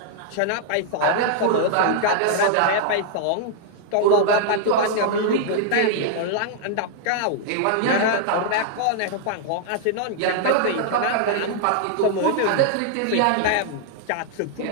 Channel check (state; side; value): different; both; correlation -0.01